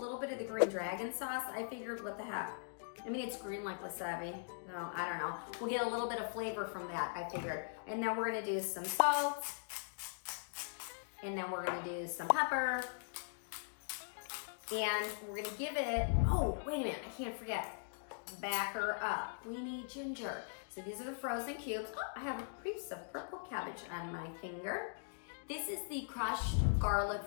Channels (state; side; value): silent; right; digital silence